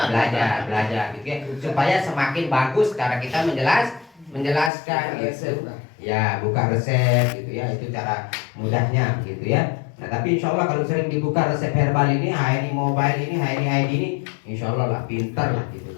gitu ya, supaya semakin bagus cara kita menjelaskan gitu. Ya buka resep gitu ya, itu cara mudahnya gitu ya. Nah tapi insya Allah kalau sering dibuka resep herbal ini, HNI mobile ini, HNI ID ini, insya Allah lah pintar lah gitu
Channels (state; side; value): drops out; right; at 4.7 s